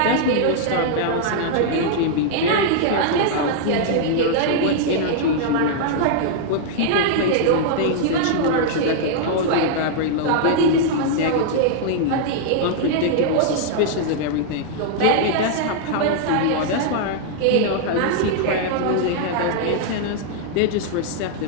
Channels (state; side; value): different; both; correlation -0.01